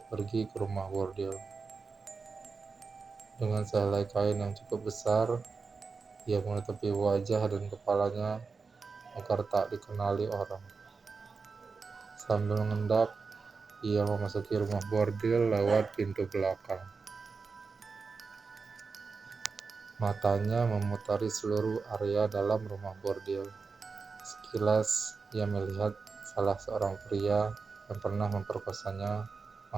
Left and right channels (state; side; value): quieter; left; 4.7 dB